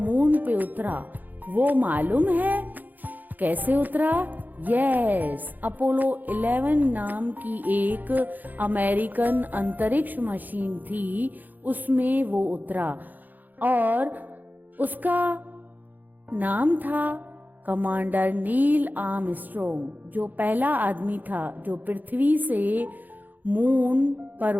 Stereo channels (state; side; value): late; left; 0.084 ms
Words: पे उतरा। वो मालूम है कैसे उतरा? यस, अपोलो 11 नाम की एक अमेरिकन अंतरिक्ष मशीन थी, उसमें वो उतरा और उसका नाम था कमांडर नील आर्मस्ट्रॉन्ग, जो पहला आदमी था जो पृथ्वी से मून पर